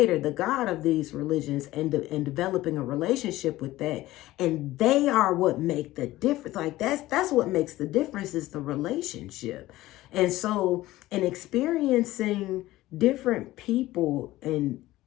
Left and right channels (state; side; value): quieter; right; 16.7 dB